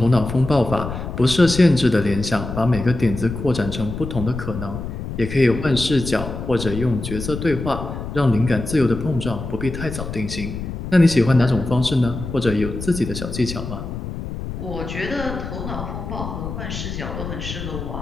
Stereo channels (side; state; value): left; noise; rumble, 7 dB below the sound